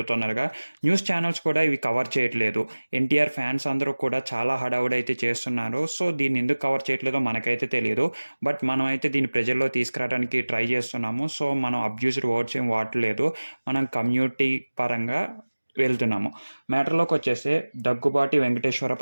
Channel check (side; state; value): both; inverted; correlation -1.00